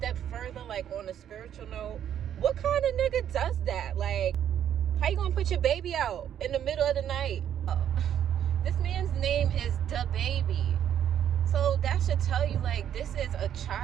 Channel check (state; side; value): quieter; left; 9.9 dB